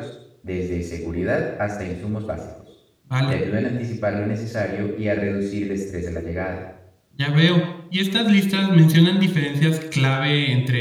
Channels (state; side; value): identical; both; correlation 1.00